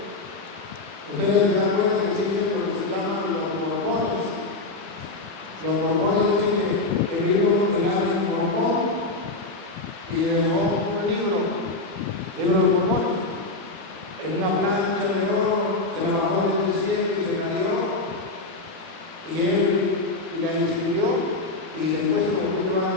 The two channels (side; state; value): right; quieter; 3.2 dB